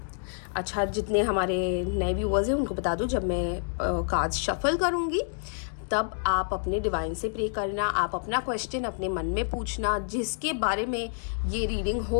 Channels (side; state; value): right; silent; digital silence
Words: अच्छा, जितने हमारे नए व्यूअर्स हैं उनको बता दूं, जब मैं कार्ड्स शफल करूंगी तब आप अपने डिवाइन से प्रे करना, आप अपना क्वेश्चन अपने मन में पूछना जिसके बारे में ये रीडिंग